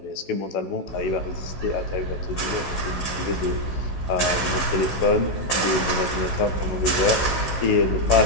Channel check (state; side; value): late; right; 16 ms